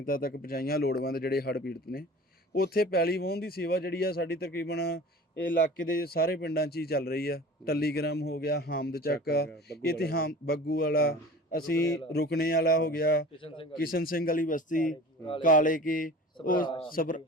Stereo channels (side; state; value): both; normal; correlation 0.40